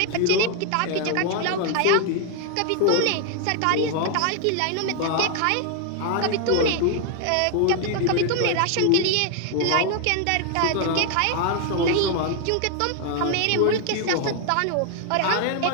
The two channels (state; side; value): different; both; correlation 0.00